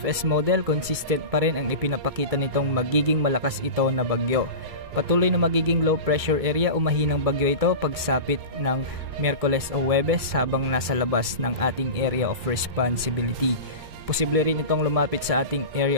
model, consistent pa rin ang ipinapakita nitong magiging malakas ito na bagyo. Patuloy na magiging low pressure area o mahinang bagyo ito pagsapit ng Miyerkules o Huwebes habang nasa labas ng ating area of responsibility. Posible rin itong lumapit sa ating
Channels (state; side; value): late; left; 2.3 ms